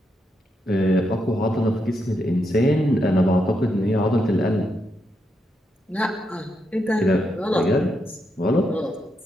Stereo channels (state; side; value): normal; both; correlation 0.82